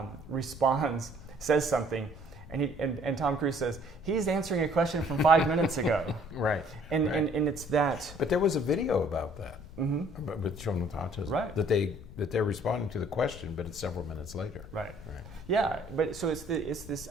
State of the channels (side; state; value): left; noise; rumble, 15 dB below the sound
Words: responds, says something, and Tom Cruise says, he's answering a question from 5 minutes ago. Right. And it's that. But there was a video about that with children with autism. Right. That they're responding to the question, but it's several minutes later. Right. Right. Yeah. But so it's this